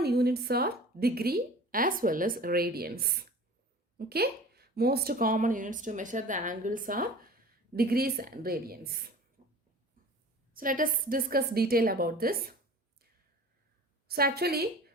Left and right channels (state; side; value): normal; both; correlation 0.42